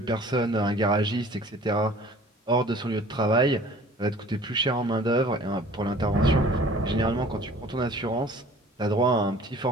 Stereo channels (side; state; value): both; normal; correlation 0.49